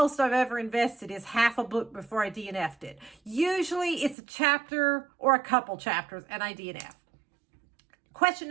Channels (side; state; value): left; drops out; at 4.2 s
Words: I've ever invested, is half a book before I DNF'd it. Usually it's a chapter or a couple chapters and I DNF. Question